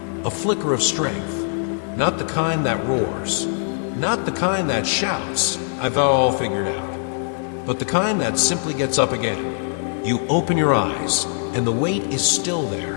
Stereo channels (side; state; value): right; silent; 64 dB below the other